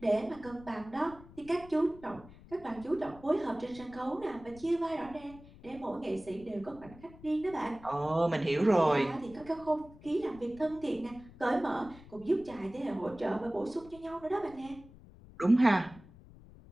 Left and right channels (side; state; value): left; noise; rumble, 20 dB below the sound